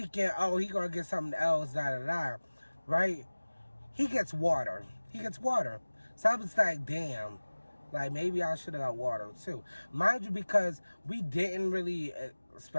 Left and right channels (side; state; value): both; inverted; correlation -1.00